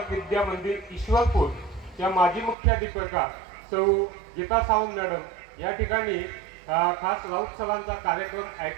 विद्या मंदिर ईश्वरपूर च्या माजी मुख्याध्यापिका सौ गीता सावंत मॅडम या ठिकाणी खास राऊत सरांचा कार्यक्रम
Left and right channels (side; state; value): left; drops out; at 2.6 s